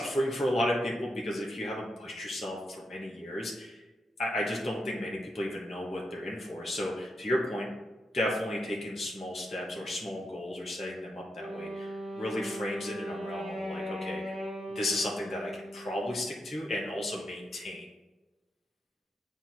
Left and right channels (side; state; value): both; normal; correlation 0.83